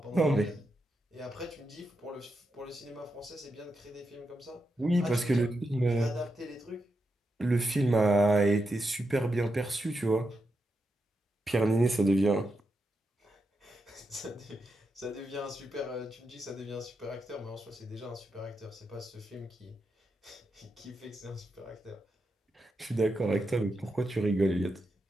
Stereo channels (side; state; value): both; normal; correlation 0.86